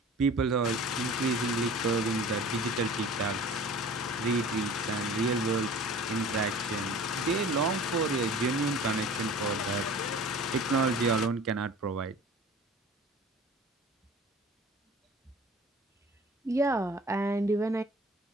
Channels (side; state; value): both; normal; correlation 0.43